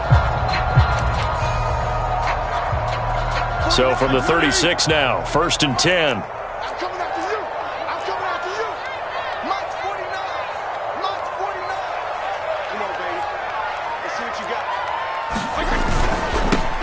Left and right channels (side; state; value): both; identical; correlation 1.00